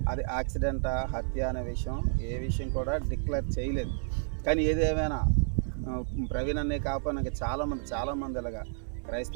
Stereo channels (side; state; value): left; silent; 57 dB below the other